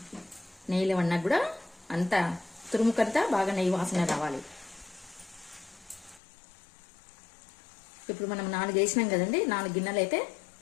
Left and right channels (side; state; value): right; drops out; at 6.2 s